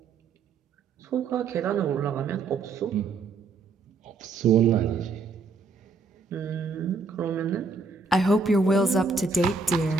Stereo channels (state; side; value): quieter; left; 4.3 dB